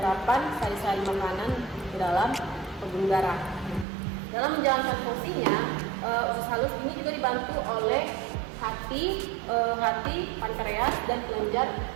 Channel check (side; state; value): left; drops out; at 3.9 s